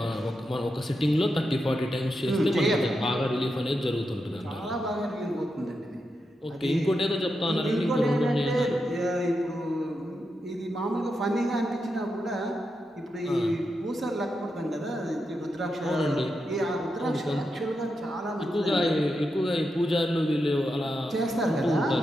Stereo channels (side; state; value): both; normal; correlation 0.86